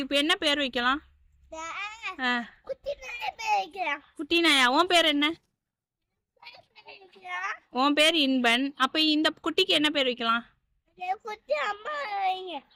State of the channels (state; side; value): identical; both; correlation 1.00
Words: இப்போ என்ன பேர் வைக்கலாம்? குட்டி நாயா? உன் பேர் என்ன? உன் பேர் இன்பன். அப்ப இந்த குட்டிக்கு என்ன பேர் வைக்கலாம்?